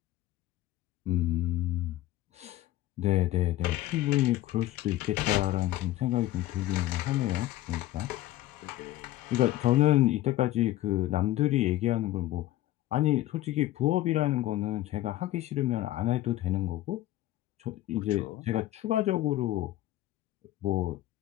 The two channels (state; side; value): quieter; right; 15.1 dB